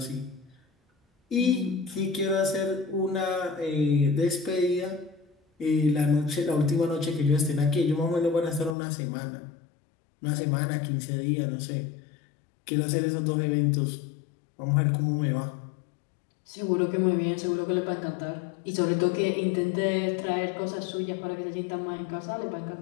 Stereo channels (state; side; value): drops out; right; at 8.8 s